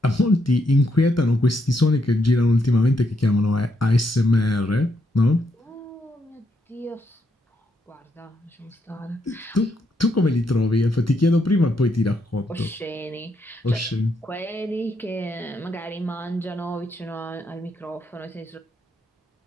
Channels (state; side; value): normal; both; correlation 0.77